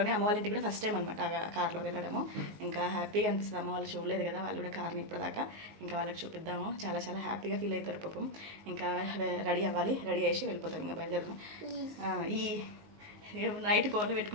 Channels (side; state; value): left; late; 19 ms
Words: అమ్మ వాళ్ళ ఇంటికి కూడా ఫస్ట్ టైం అనమాట కార్లో వెళ్ళడము. ఇంకా హ్యాపీగా అనిపిస్తుంది. అమ్మ వాళ్ళు చూడలేదు కదా, వాళ్ళు కూడా కార్ని ఇప్పటిదాకా. ఇంకా వాళ్ళకి చూపిద్దాము, చాలా చాలా హ్యాపీగా ఫీల్ అవుతారు పాపం. ఇంకా రెడీ అవ్వాలి, రెడీ చేసి వెళ్ళిపోతాం. ఇంకా బయలుదేరము. ఈ నైట్ కోన్లు